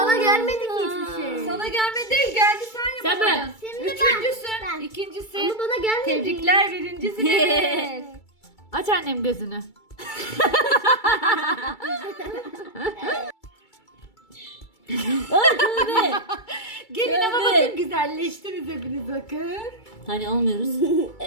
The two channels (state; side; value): late; right; 2.3 ms